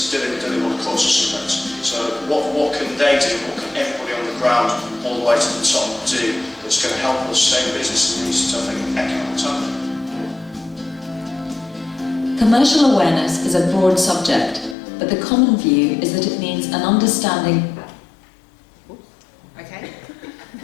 do they want a course of sunbeds? So what can they do, what can everybody on the ground all the way to the top do that's going to help us stay in business in these tough economic times? Commercial awareness is a broad subject, but the common view is that it means an understanding. Okay.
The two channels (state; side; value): drops out; right; at 14.8 s